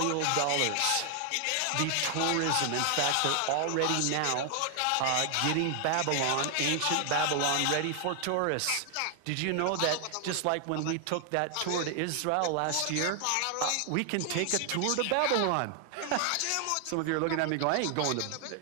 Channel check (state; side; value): different; both; correlation 0.00